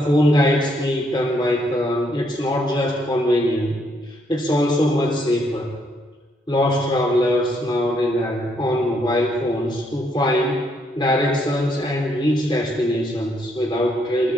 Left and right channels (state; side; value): normal; both; correlation 0.72